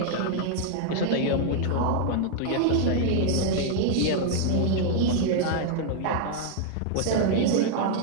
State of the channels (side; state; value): both; different; correlation 0.00